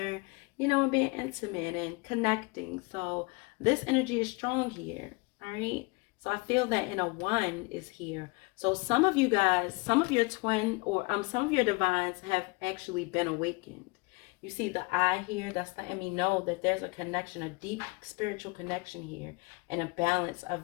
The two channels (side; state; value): right; quieter; 27.5 dB